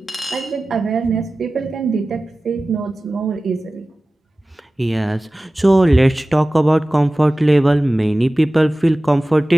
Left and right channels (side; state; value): both; normal; correlation 0.97